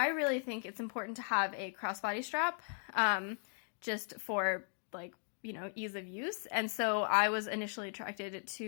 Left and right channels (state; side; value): silent; right; 53 dB below the other